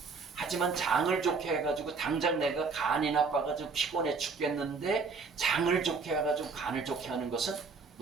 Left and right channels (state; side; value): quieter; left; 4.7 dB